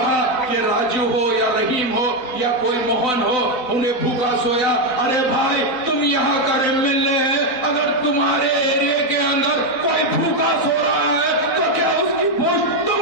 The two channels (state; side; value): late; right; 4.0 ms